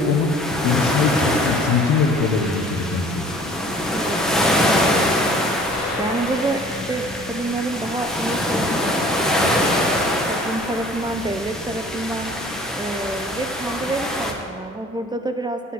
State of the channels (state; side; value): normal; both; correlation 0.50